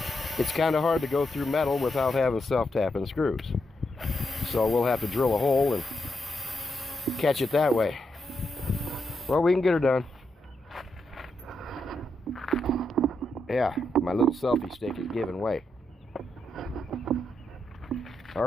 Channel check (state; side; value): normal; both; correlation 0.82